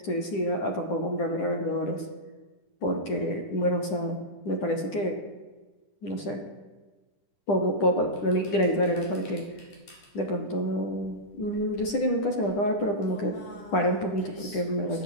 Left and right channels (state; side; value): late; right; 10 ms